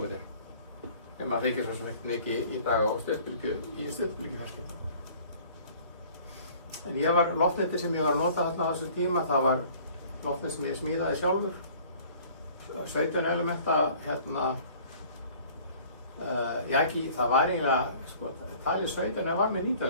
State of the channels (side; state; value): both; inverted; correlation -0.51